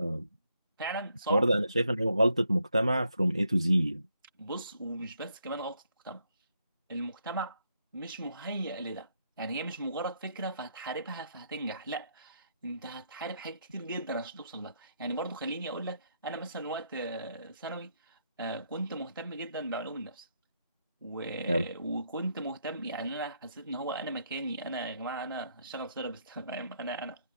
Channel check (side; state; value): both; inverted; correlation -0.76